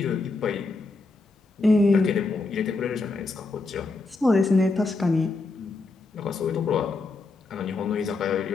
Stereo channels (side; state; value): right; quieter; 3.6 dB